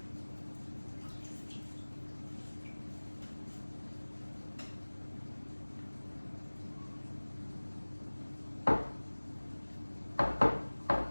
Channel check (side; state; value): both; inverted; correlation -1.00